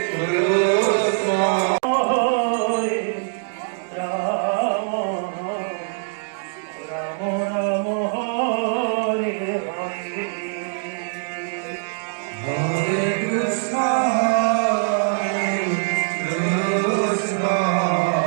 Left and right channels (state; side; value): silent; left; digital silence